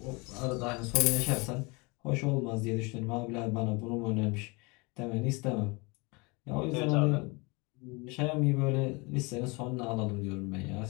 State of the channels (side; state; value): right; quieter; 27.9 dB